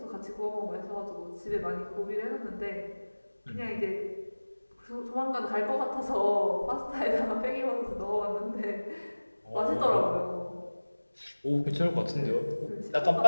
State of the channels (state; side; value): inverted; both; correlation -1.00